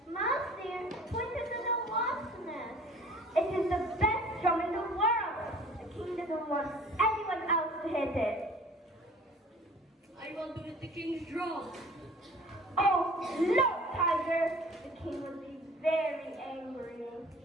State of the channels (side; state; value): both; normal; correlation 0.48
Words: Mouse dear, point it to the wasp nest. It is the best drum in the world. The king doesn't want anyone else to hit it. I want to hit the king's drum. Oh, no, Tiger. The king will be very angry.